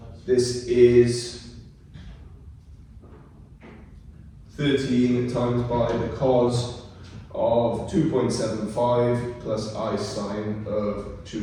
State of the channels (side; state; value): both; identical; correlation 1.00